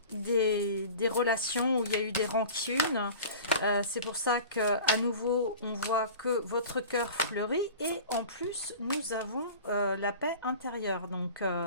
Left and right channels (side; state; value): both; inverted; correlation -0.39